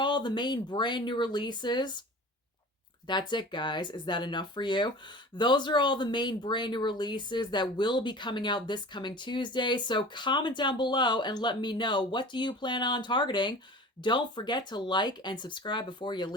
the main brand new releases. That's it, guys. Is that enough for you? Those are all the main brand new releases that will be coming out this coming Tuesday. So comment down below and let me know, what do you plan on targeting? Don't forget to like and subscribe before you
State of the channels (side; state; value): both; normal; correlation 0.39